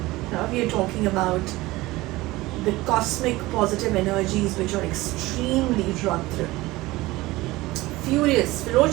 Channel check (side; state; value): left; quieter; 19.4 dB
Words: Here we are talking about the cosmic positive energies which are extremely drawn through. Furious,